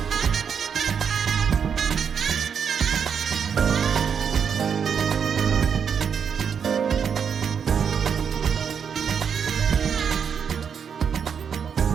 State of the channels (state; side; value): quieter; left; 7.1 dB